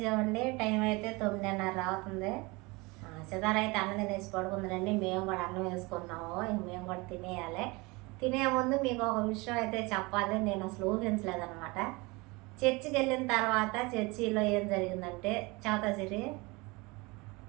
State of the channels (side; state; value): left; quieter; 25.2 dB